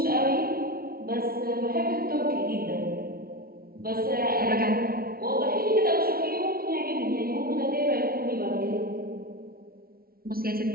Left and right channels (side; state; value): left; late; 0.44 ms